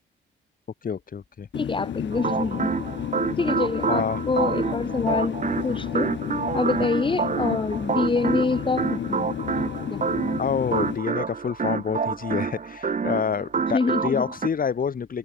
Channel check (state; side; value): normal; both; correlation 0.36